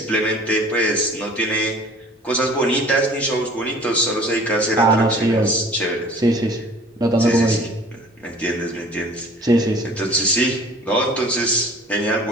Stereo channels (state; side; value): normal; both; correlation 0.48